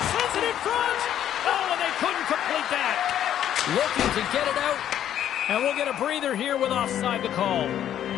Sends it in front. Oh, and they couldn't complete that. Looking to get it out. And we'll get a breather here with offside the call.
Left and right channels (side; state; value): right; quieter; 10.7 dB